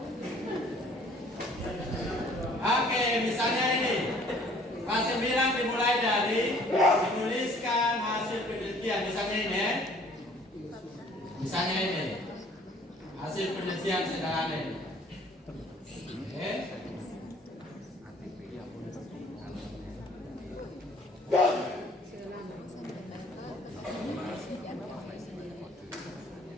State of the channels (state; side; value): normal; both; correlation 0.56